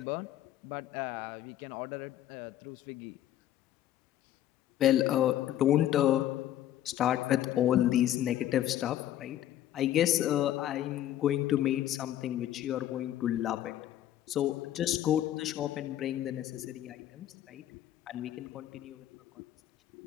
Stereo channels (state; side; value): quieter; right; 12.4 dB